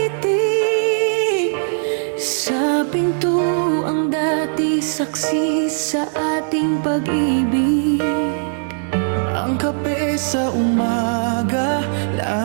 sa Sa pinto ang dati saksi sa ating pag-ibig. Ang kape sa umaga,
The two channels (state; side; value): silent; left; digital silence